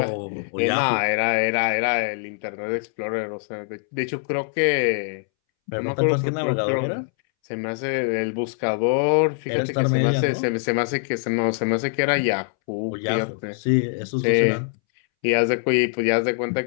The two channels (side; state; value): right; silent; 63 dB below the other